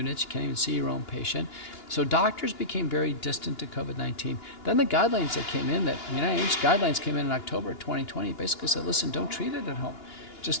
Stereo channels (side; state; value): right; late; 2.9 ms